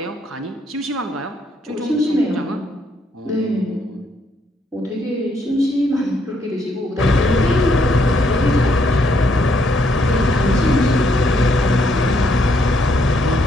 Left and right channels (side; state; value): both; normal; correlation 0.73